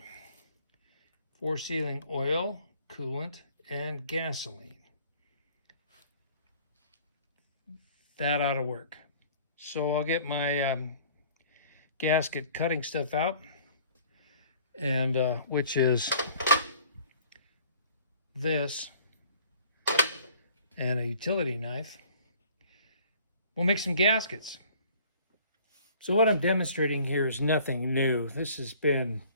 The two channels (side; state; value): both; inverted; correlation -0.53